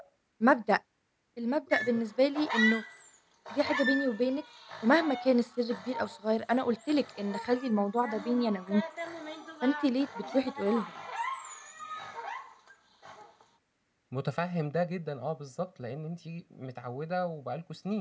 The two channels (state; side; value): identical; both; correlation 1.00